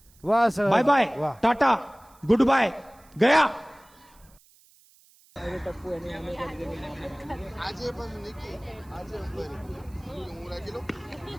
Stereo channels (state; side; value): noise; right; hiss, 29 dB below the sound